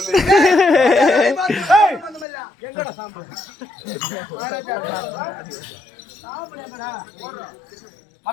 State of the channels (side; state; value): right; drops out; at 2.2 s